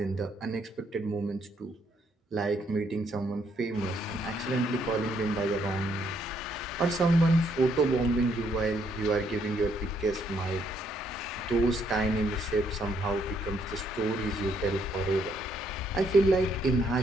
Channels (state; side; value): normal; both; correlation 0.71